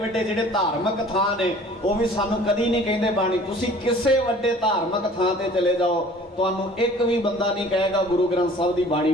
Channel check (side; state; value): both; normal; correlation 0.49